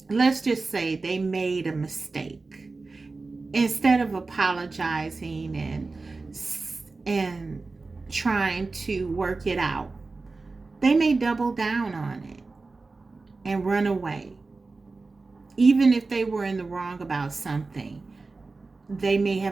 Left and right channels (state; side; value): quieter; left; 3.7 dB